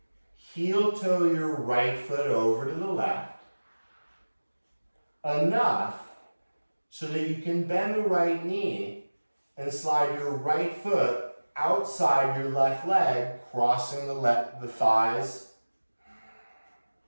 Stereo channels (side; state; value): both; inverted; correlation -1.00